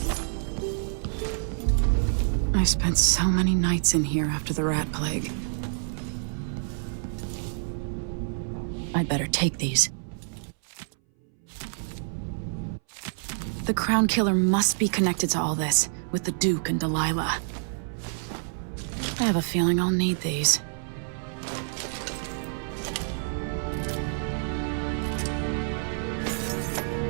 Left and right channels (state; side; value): silent; left; 60 dB below the other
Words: I spent so many nights in here after the rat plague. I'd better take these. The Crown Killer must be connected to all this, with the Duke and Delilah. I have a feeling I'll need these.